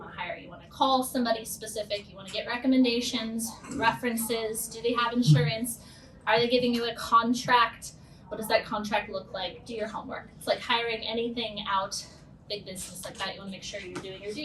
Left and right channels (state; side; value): identical; both; correlation 1.00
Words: to hire. You want to call somebody specific. You want to get recommendations, references. Do they have insurance? Are they giving you a contract? What does that contract look like? Do your homework. It's like hiring anything out, big business like that. You want to make sure you're doing your